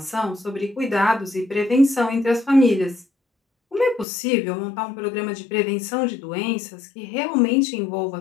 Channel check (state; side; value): drops out; right; at 4.0 s